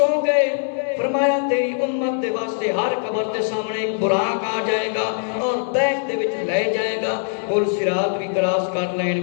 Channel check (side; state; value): right; silent; 60 dB below the other